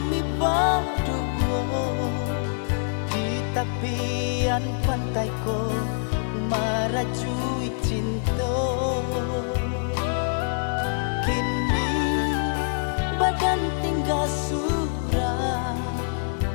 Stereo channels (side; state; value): right; silent; 61 dB below the other